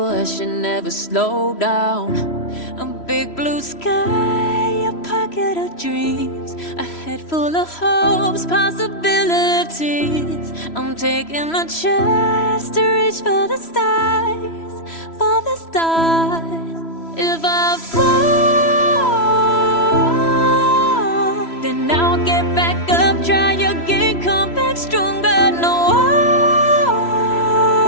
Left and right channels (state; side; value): late; right; 3.0 ms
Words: never slow down. A big blue sky, a pocket of dreams, a head full of hopes, possibilities. I'm taking a chance to reach for the stars, for the stars. If I fall, then I'll get back up, try again, come back stronger. No